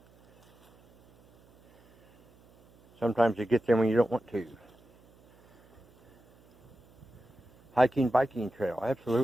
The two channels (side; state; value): right; noise; hum, 29 dB below the sound